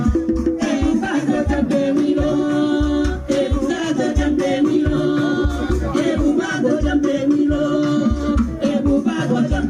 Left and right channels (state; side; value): identical; both; correlation 1.00